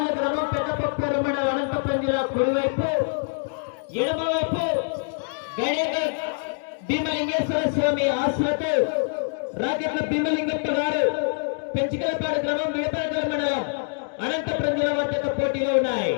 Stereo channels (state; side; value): silent; right; 61 dB below the other